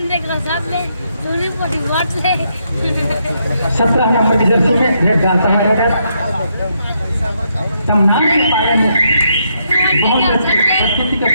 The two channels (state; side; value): inverted; both; correlation -0.77